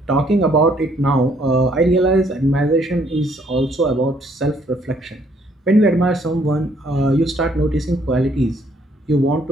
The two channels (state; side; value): normal; both; correlation 0.66